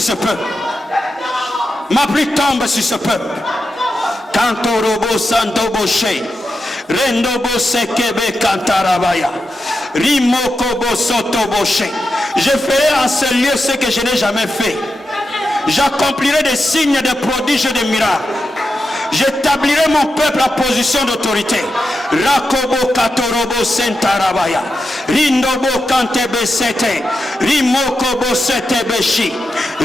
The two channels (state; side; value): normal; both; correlation 0.88